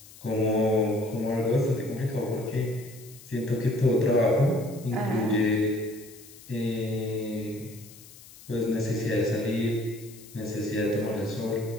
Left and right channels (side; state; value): left; noise; hiss, 20 dB below the sound